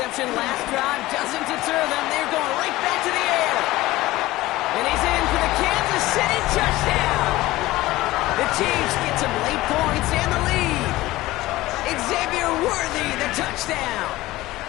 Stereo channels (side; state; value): right; quieter; 17.8 dB